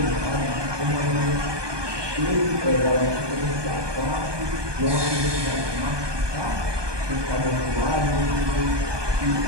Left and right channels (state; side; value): late; left; 1.2 ms